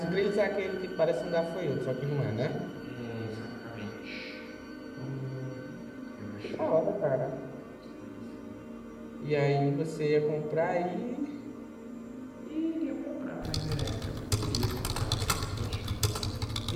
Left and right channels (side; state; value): both; identical; correlation 1.00